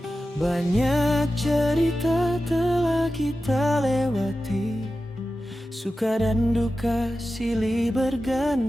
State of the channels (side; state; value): both; normal; correlation 0.93